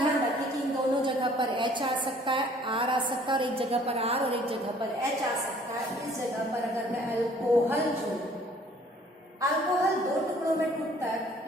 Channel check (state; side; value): normal; both; correlation 0.56